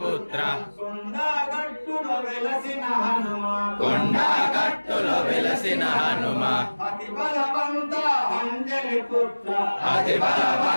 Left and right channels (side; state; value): both; inverted; correlation -1.00